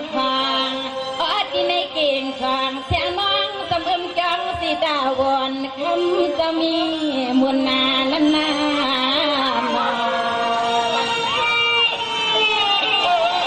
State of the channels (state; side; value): identical; both; correlation 1.00